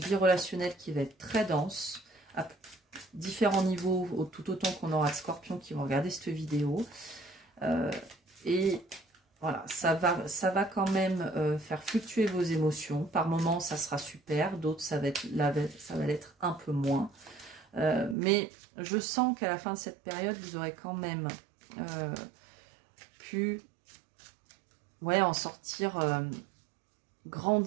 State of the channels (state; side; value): drops out; left; at 18.2 s